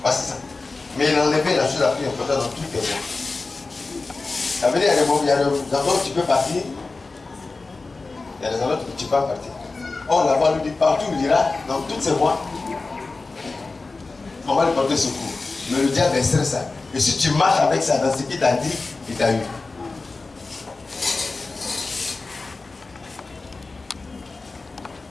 Voici ça. Mais il enlevait la chose la plus importante dans toutes tes voies. Ça veut dire, il y a des endroits où tu peux partir, il y a des endroits où tu ne peux pas partir. Or, là-bas, lui dit partout, il dira, dans toutes ces voies, on va lui porter secours. Mais le diable est stressé. Et si tu marches avec ça, dans ce qu'il t'a dit, il t'a eu.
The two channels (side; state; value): right; quieter; 3.7 dB